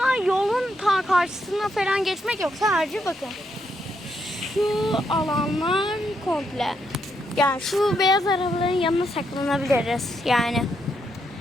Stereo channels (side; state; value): both; normal; correlation 0.79